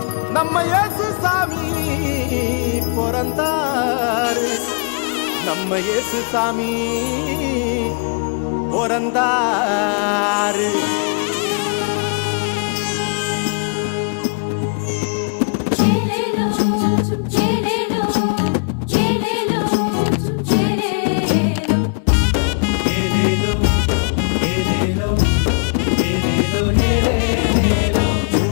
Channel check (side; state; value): right; quieter; 38.9 dB